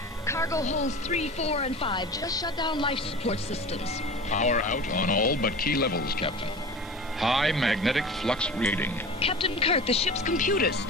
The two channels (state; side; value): normal; both; correlation 0.35